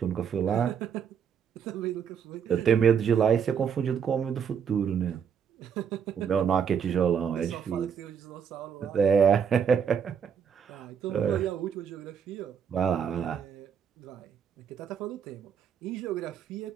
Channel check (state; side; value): quieter; left; 7.5 dB